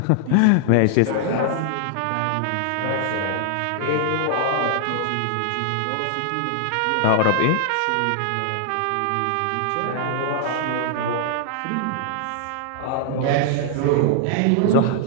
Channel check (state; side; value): different; both; correlation 0.00